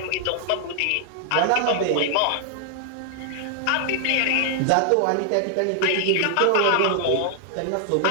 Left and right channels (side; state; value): both; different; correlation 0.00